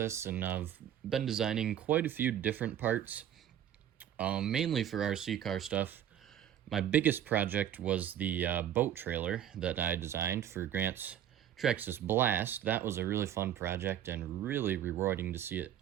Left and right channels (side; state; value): left; quieter; 10.5 dB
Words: and I've been designing quite a few different parts, mainly for RC car stuff. My biggest project was the boat trailer that I designed for Grant's Traxxas Blast. That was a really fun project and really rewarding to see it